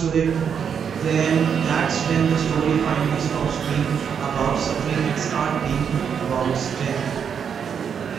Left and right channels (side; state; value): left; quieter; 7.3 dB